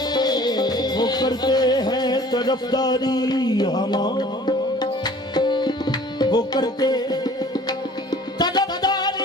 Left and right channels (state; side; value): normal; both; correlation 0.50